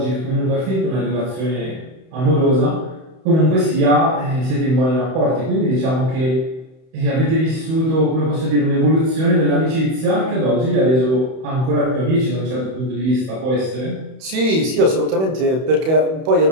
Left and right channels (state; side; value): late; left; 31 ms